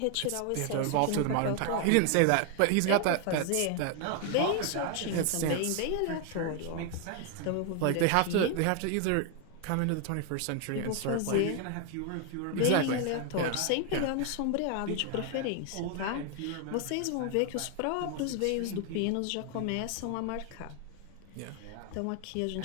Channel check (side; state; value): both; different; correlation 0.00